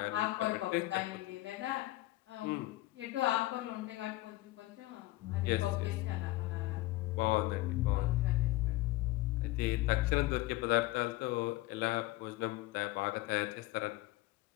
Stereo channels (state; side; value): quieter; right; 18.4 dB